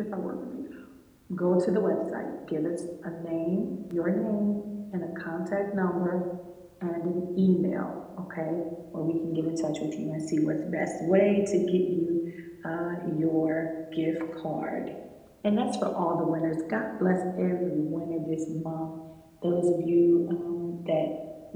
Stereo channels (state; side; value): identical; both; correlation 1.00